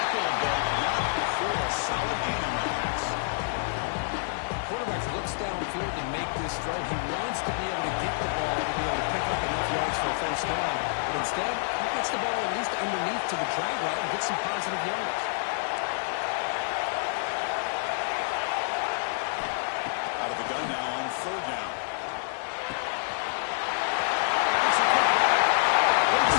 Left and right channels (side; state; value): right; silent; digital silence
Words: but not before a solid gain on that pass. Quarterback looks downfield to make this throw. He wants to be able to get the ball to be able to pick up enough yards for a first down. But instead, he gets the ball at least underneath to the drag route and gets some positive yards. Out of the gun now on 3rd down.